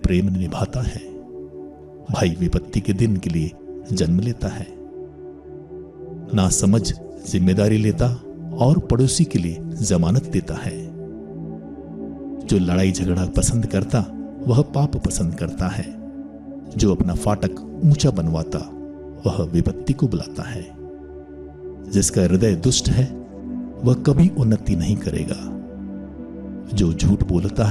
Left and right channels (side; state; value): both; identical; correlation 1.00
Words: प्रेम निभाता है। भाई विपत्ति के दिन के लिए जन्म लेता है। ना समझ जिम्मेदारी लेता और पड़ोसी के लिए जमानत देता है। जो लड़ाई झगड़ा पसंद करता वह पाप पसंद करता है। जो अपना फाटक ऊंचा बनवाता वह विपत्ति को बुलाता है। जिसका हृदय दुष्ट है वह कभी उन्नति नहीं करेगा। जो झूठ बोलता